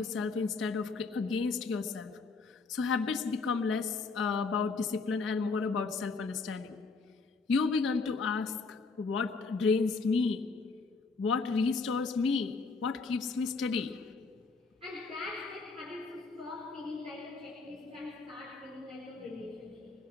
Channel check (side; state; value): right; quieter; 4.3 dB